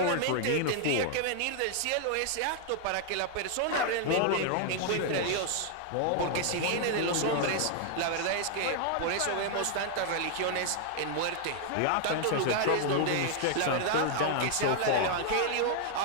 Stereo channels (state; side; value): different; both; correlation 0.00